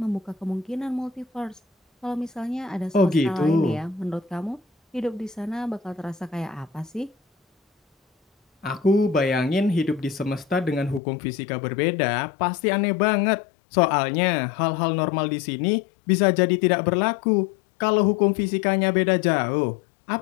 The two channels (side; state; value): right; drops out; at 11.0 s